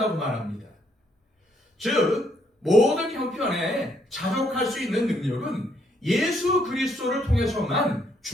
말합니다. 즉 모든 형편에 자족할 수 있는 능력은 예수 그리스도를 통해서만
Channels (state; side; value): normal; both; correlation 0.71